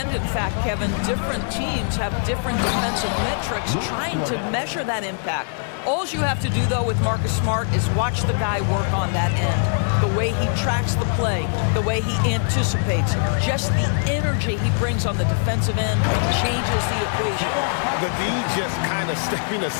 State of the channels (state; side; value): silent; right; 61 dB below the other